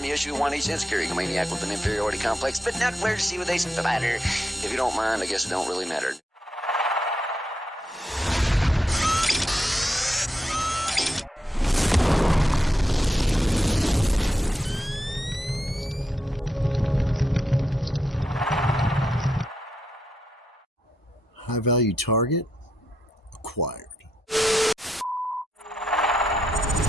Issue 1H, insecurity maniac with an inferiority complex, but not where to see what they spatter. If you don't mind, I guess it don't really matter. High-value target acquired.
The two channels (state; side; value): normal; both; correlation 0.82